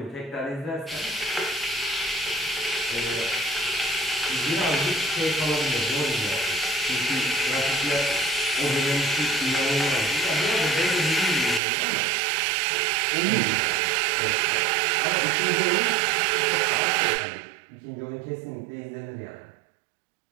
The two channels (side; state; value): left; drops out; at 11.6 s